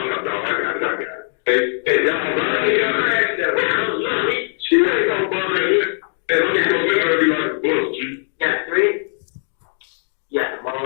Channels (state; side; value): silent; right; digital silence